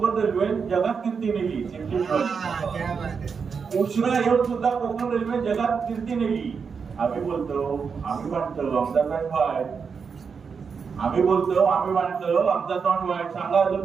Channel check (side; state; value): left; quieter; 5.8 dB